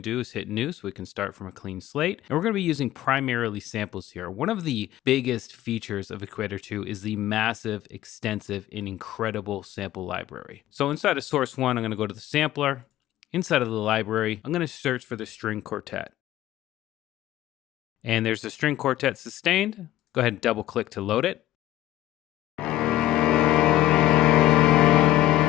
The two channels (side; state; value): right; quieter; 14.2 dB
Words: to do is hit new so we can start from a clean slate. And we're going to be using primarily samples here. One of the biggest features of Equator 2 is the massive, extensive, and incredible sample library. So inside of source 1, I'm going to go to the sampler. Inside of the library, I'm going to search for the string quartet. And there's the string quartet sustained. Go ahead and double click to load it.